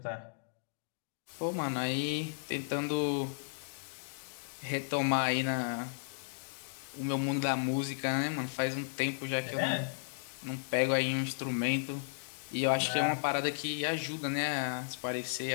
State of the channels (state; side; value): silent; right; digital silence